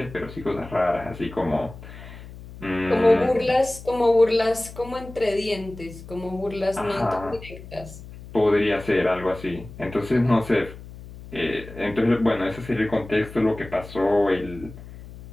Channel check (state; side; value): noise; left; hum, 16 dB below the sound